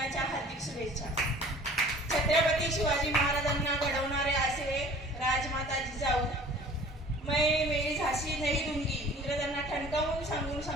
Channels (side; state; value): both; normal; correlation 0.48